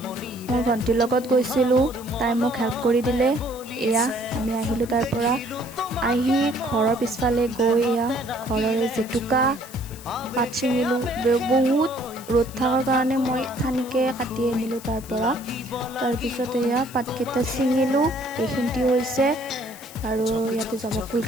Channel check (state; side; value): noise; left; hiss, 18 dB below the sound